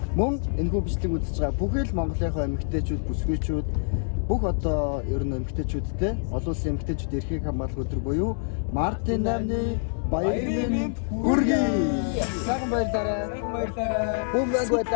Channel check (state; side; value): silent; right; digital silence